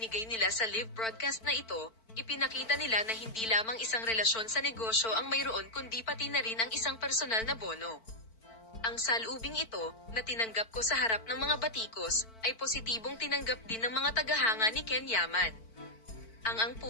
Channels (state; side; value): late; right; 4.5 ms